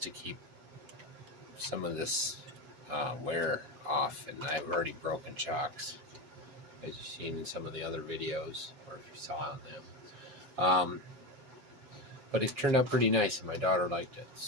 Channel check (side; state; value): left; late; 7.1 ms